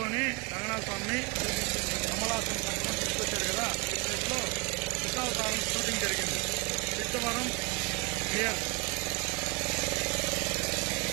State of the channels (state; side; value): quieter; left; 27.3 dB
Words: రంగనాథ స్వామిని కమలాసన్ కట్టుకొని తీసుకొచ్చారు కదా. ఈ ప్లేస్ లో దశావతారం షూటింగ్ జరిగింది. సిద్ధవరం క్లియర్.